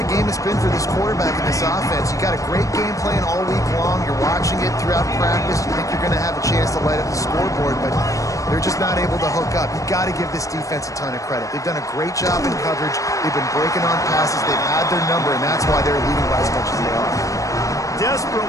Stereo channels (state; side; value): late; right; 0.16 ms